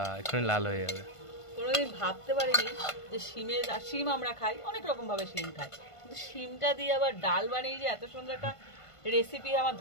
এক্ষুনি লাল হয়ে যাবে। কোনোদিন ভাবতে পারিনি যে শিম আমরা খাই অনেক রকম ভাবে, শিম খাই, কিন্তু শিমটা দিয়ে আবার ডাল বানিয়ে যে এত সুন্দর একটা রেসিপি আমার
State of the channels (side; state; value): right; late; 1.5 ms